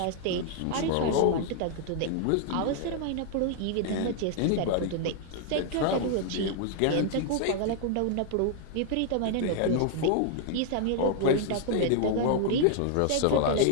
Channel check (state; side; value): different; both; correlation 0.00